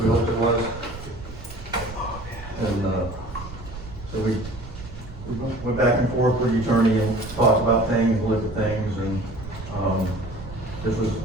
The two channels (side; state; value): right; noise; rumble, 13 dB below the sound